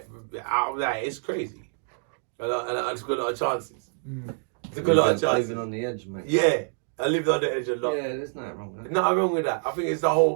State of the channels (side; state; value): left; silent; 61 dB below the other